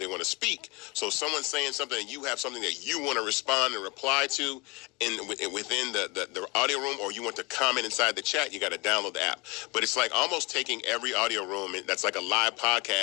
want to speak, so someone's saying something and you have something that you want to respond and reply to within the audio room, or you want to comment inside the chat, you got to download the app. But it's like almost taking every audio room that's like a live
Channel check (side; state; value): right; quieter; 26.4 dB